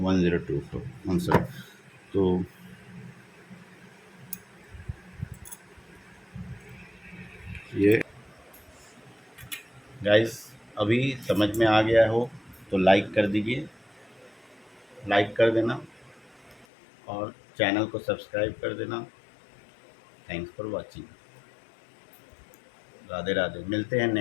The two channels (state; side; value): drops out; right; at 16.7 s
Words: आंसर। तो ये गाइस अभी समझ में आ गया हो तो लाइक कर दीजिए, लाइक कर देना और चैनल को सब्सक्राइब कर देना। Thanks for watching. Radhe Radhe, मिलते हैं